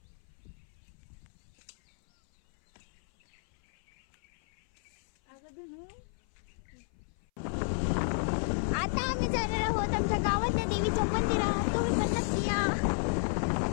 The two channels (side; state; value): right; silent; 56 dB below the other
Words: आता आम्ही जाणार आहोत आमच्या गावातल्या देवीच्या मंदिरात. तुम्ही पण नक्की या.